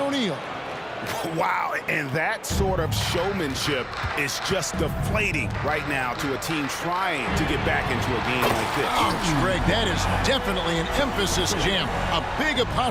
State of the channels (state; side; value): identical; both; correlation 1.00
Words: Wow, and that sort of showmanship is just deflating right now to a team trying to get back into a game like this. Ouch, Greg, that is definitely an emphasis jam. A big